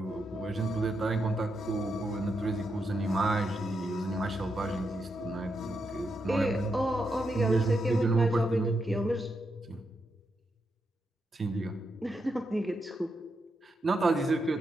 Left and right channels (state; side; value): normal; both; correlation 0.83